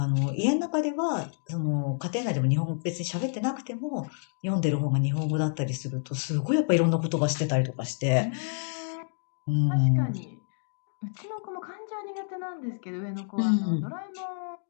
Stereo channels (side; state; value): right; silent; digital silence